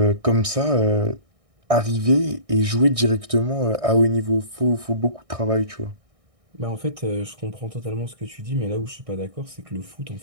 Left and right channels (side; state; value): left; late; 1.6 ms